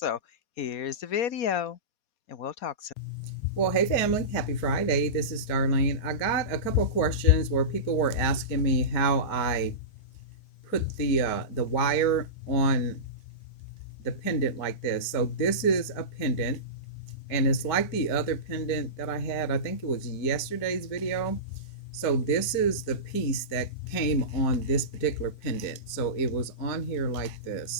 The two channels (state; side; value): late; right; 4.2 ms